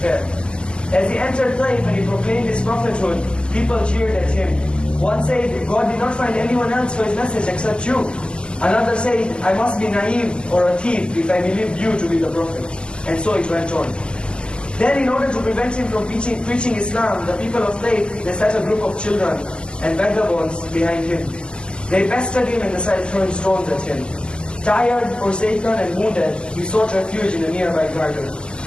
As he entered Taif and he proclaimed his prophethood, people cheered at him. One said, God did not find anyone else for his message except you. Another said, I must be naive or a thief if I believed you to be the prophet. And so it went on. Then in order to prevent him from preaching Islam, the people of Taif, they set a group of children and vagabonds behind him. They pestered him and they started throwing stones at him. Tired, forsaken and wounded, he sought refuge in a nearby garden.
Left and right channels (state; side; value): late; right; 0.049 ms